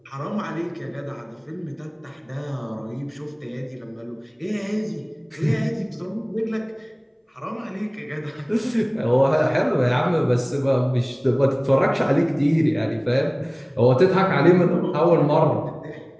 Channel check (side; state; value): both; identical; correlation 1.00